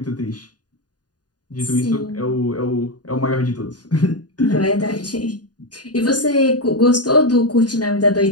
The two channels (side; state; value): right; late; 0.69 ms